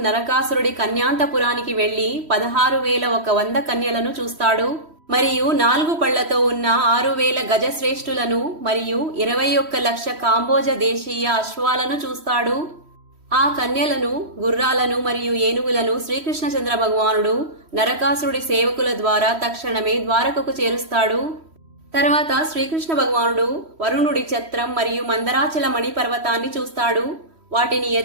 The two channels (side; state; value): left; late; 3.1 ms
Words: నరకాసురుడి కన్యాంతపురానికి వెళ్లి 16,100 కన్యలను చూస్తాడు. మరియు 4 పళ్లతో ఉన్న 6,000 గజశ్రేష్ఠులను మరియు 21 లక్ష కాంబోజ దేశీయ అశ్వాలను చూస్తాడు. ఆ కన్యలను, గుర్రాలను మరియు ఏనుగులను శ్రీకృష్ణచంద్ర భగవానుడు నరకాసురుడి సేవకుల ద్వారా తక్షణమే ద్వారకకు చేరుస్తాడు. తర్వాత శ్రీకృష్ణ భగవానుడు వరుణుడి ఛత్రం మరియు మందరాచల మణి పర్వతాన్ని చూస్తాడు. వాటిని